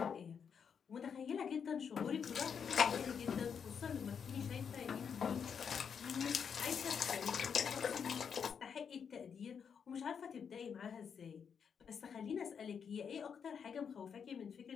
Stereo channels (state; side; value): quieter; right; 6.9 dB